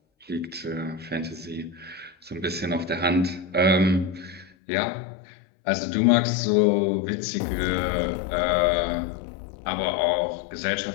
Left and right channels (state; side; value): drops out; right; at 4.5 s